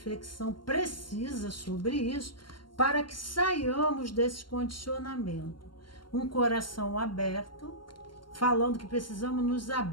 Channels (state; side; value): late; right; 0.72 ms